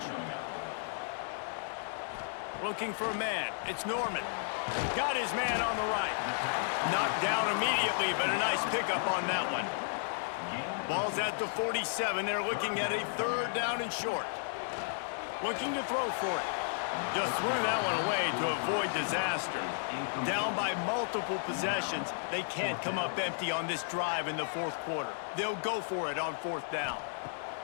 Looking for a man. It's Norman. Got his man on the right. Knocked down immediately, but a nice pickup on that one. Ball's at the 47. They're looking at a 3rd down and short. Looking to throw for it. Just threw that one away to avoid disaster. Down by multiple possessions, they can't come up empty on this drive in the 4th quarter. They'll go for it on 4th down.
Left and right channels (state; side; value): silent; right; digital silence